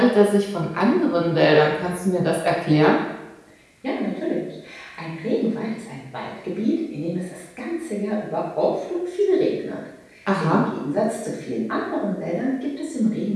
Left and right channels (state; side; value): identical; both; correlation 1.00